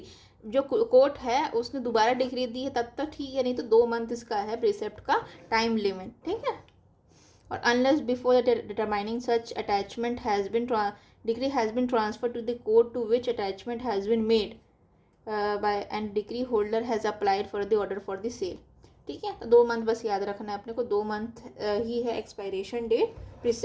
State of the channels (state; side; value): identical; both; correlation 1.00